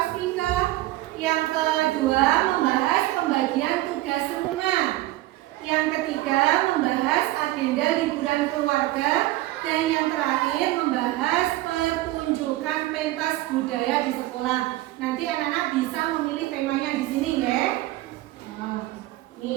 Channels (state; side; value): quieter; left; 17.3 dB